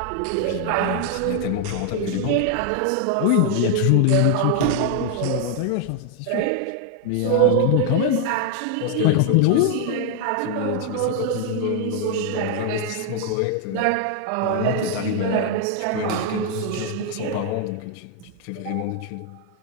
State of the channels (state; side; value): different; both; correlation 0.00